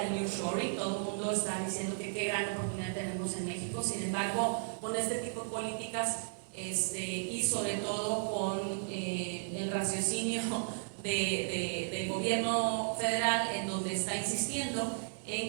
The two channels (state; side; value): silent; left; digital silence